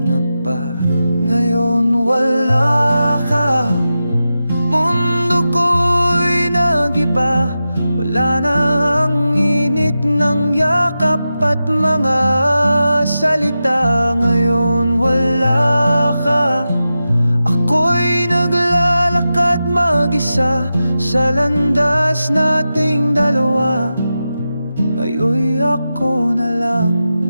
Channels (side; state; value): both; inverted; correlation -0.92